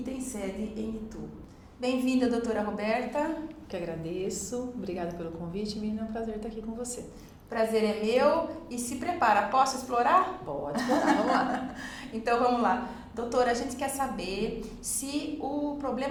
tem sede em Itu. Bem-vinda, doutora Roberta. Que agradeço, obrigada pelo convite, Miriam, é um prazer estar aqui com você. Prazer é meu e se prepara, posso explorar? Pode explorar, vamos lá. Então vamos lá. Doutora, a gente quer saber se o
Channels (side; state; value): both; identical; correlation 1.00